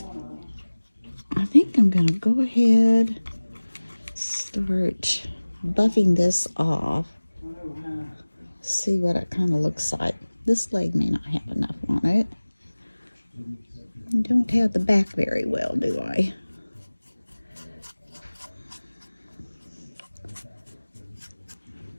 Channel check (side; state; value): both; inverted; correlation -1.00